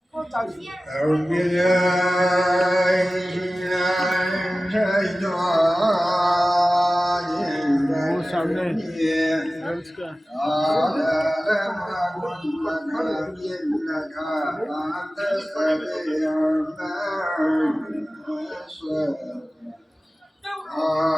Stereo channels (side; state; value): both; normal; correlation 0.96